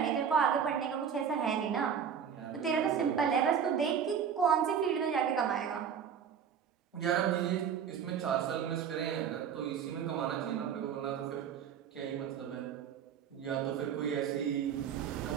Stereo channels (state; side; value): quieter; left; 7.7 dB